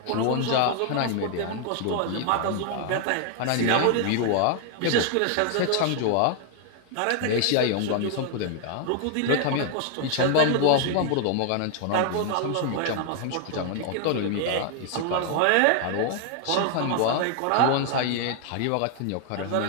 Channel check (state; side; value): different; both; correlation 0.00